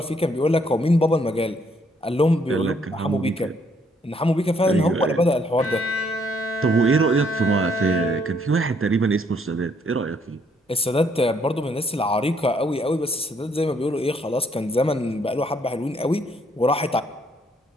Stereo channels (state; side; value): normal; both; correlation 0.69